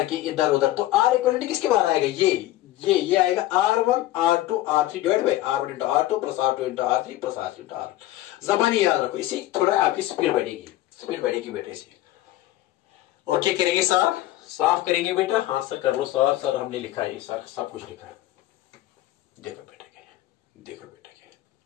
इधर उधर, तो R इक्विवेलेंट किसके बार आएगा? ये आएगा R1 R2 R3 divide by R1 into R2 plus R2 into R3 plus R3 into R1। जबानी याद रखो, इसी थोड़ा आपकी स्पीड बढ़ेगी बेटा इसी। ओके करेंगे सर? साफ करेंगे बेटा? हाँ सर कर लो सर हमने लिखा है सर, सब कुछ लिखा है। देखो बेटा क्या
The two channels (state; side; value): quieter; right; 15.5 dB